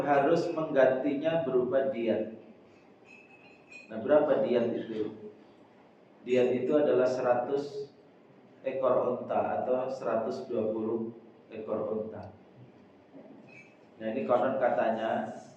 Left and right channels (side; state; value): both; identical; correlation 1.00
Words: harus menggantinya berupa diat. Nah, berapa diat itu? Diat itu adalah 100 ekor unta atau 120 ekor unta. Nah, ini konon katanya